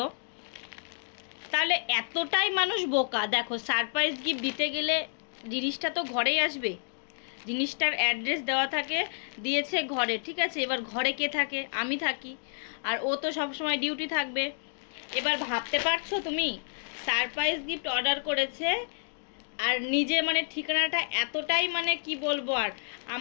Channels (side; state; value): right; silent; digital silence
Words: তাহলে এতটাই মানুষ বোকা, দেখো সারপ্রাইজ গিফট দিতে গেলে জিনিসটা তো ঘরেই আসবে, জিনিসটার অ্যাড্রেস দেওয়া থাকে, দিয়েছে ঘরে, ঠিক আছে? এবার ঘরে কে থাকে? আমি থাকি, আর ও তো সবসময় ডিউটি থাকবে। এবার ভাবতে পারছো তুমি, সারপ্রাইজ গিফট অর্ডার করেছে, আর নিজে মানে ঠিকানাটা এতটাই মানে কি বলবো আর,